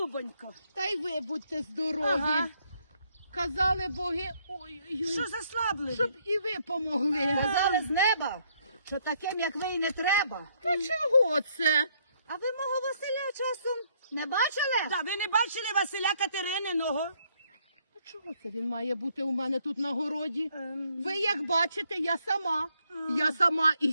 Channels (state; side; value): inverted; both; correlation -0.70